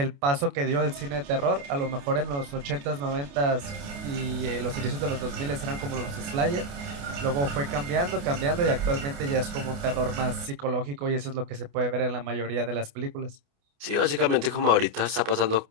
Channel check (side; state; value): left; late; 28 ms